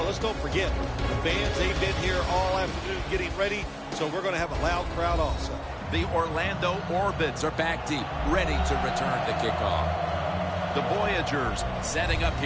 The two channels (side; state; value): both; identical; correlation 1.00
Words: let's don't forget, the fans, they've been here all afternoon getting ready, so we're going to have a loud crowd also. The Orlando Orbits are back deep, ready to return to kickoff. The Voyagers setting up